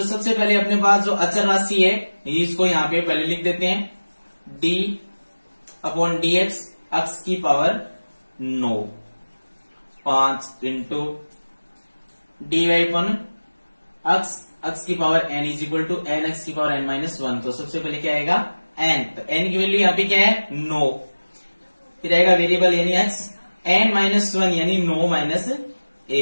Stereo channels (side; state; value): both; inverted; correlation -1.00